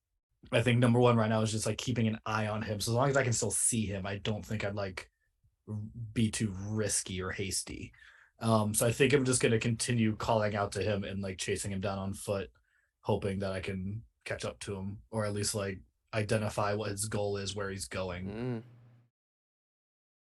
I think number one right now is just like keeping an eye on him. So as long as I can still see him, I don't think I'd like be too risky or hasty. So I think I'm just going to continue calling out to him and like chasing him down on foot, hoping that I can catch up to him, or at least like identify what his goal is, where he's going.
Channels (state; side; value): identical; both; correlation 1.00